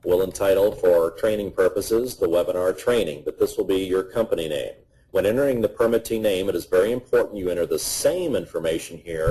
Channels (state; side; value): identical; both; correlation 1.00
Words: We'll entitle, for training purposes, the webinar training, but this will be your company name. When entering the permittee name, it is very important you enter the same information